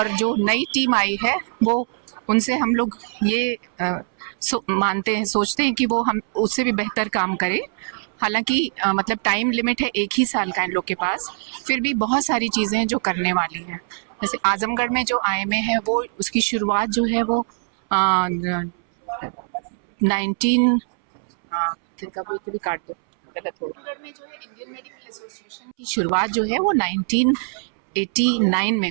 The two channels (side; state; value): left; silent; 64 dB below the other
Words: जो नई टीम आई है वो उनसे हम लोग ये मानते हैं, सोचते हैं कि वो हम उससे भी बेहतर काम करें। हालांकि मतलब टाइम लिमिट है 1 ही साल का इन लोग के पास, फिर भी बहुत सारी चीज़ें हैं जो करने वाली हैं। जैसे आजमगढ़ में जो आईएमए है वो उसकी शुरुआत जो है वो 19 आजमगढ़ में जो है इंडियन मेडिकल एसोसिएशन की शुरुआत जो है वो 1989 में